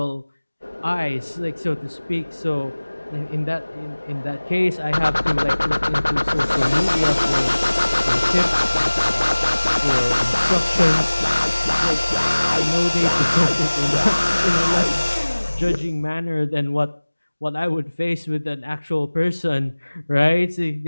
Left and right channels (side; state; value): both; inverted; correlation -1.00